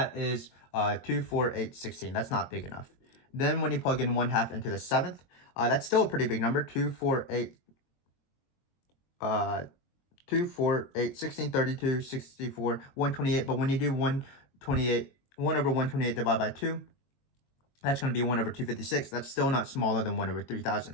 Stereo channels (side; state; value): right; late; 22 ms